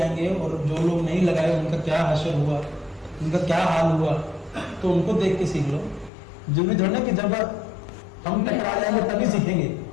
और जो लोग नहीं लगाए उनका क्या हश्र हुआ, उनका क्या हाल हुआ, तो उनको देख के सीख लो। जरूरी थोड़ा ना कि जब हम टकरा जाएंगे तभी सीखेंगे,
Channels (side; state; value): right; drops out; at 6.1 s